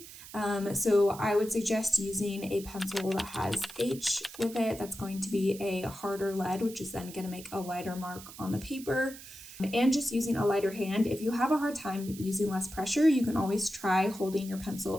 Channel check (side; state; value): right; noise; hiss, 15 dB below the sound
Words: So I would suggest using a pencil that has H with it. That's going to be a harder lead, which is then going to make a lighter mark on the paper. And just using a lighter hand. If you have a hard time using less pressure, you can always try holding your